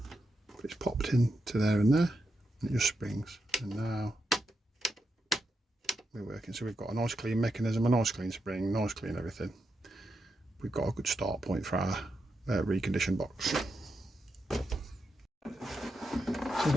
but it's popped in to there and there, and it just springs. And now we're working. So we've got a nice clean mechanism, a nice clean spring, nice clean everything. We've got a good start point for our reconditioned box. So I'm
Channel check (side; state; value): both; normal; correlation 0.84